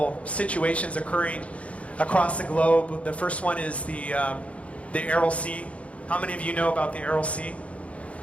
situations occurring across the globe. The first one is the Aral Sea. How many of you know about the Aral Sea?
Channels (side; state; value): right; late; 0.064 ms